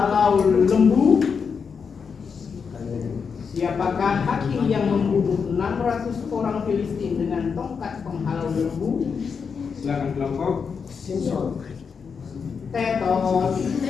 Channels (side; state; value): right; quieter; 6.0 dB